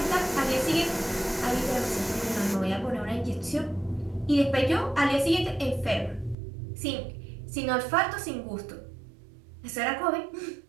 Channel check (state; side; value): drops out; left; at 6.4 s